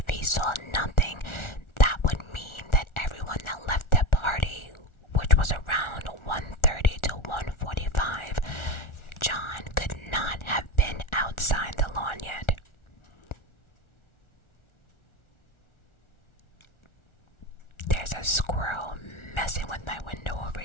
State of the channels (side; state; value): right; late; 1.4 ms